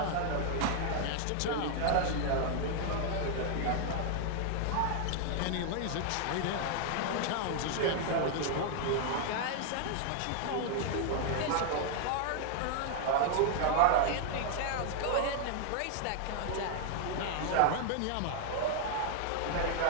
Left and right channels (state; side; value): different; both; correlation 0.00